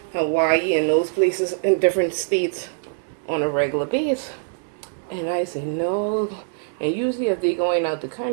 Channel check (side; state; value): left; silent; 63 dB below the other